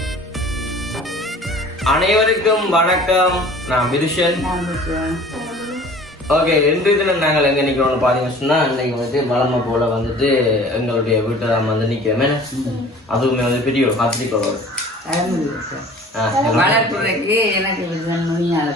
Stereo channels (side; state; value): both; normal; correlation 0.46